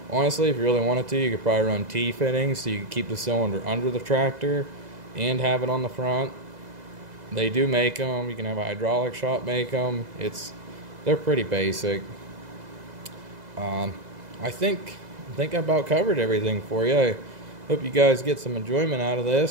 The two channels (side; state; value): left; late; 2.0 ms